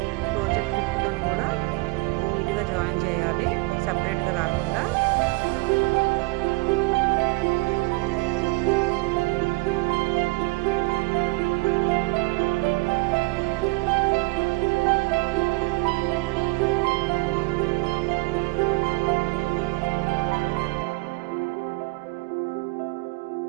క్రోచెట్ హుక్తో కూడా నీట్గా జాయిన్ చేయాలి, సపరేట్గా రాకుండా.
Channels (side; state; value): left; quieter; 25.5 dB